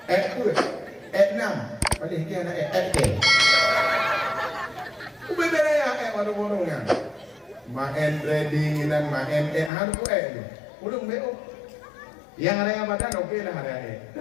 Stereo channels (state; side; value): drops out; right; at 9.7 s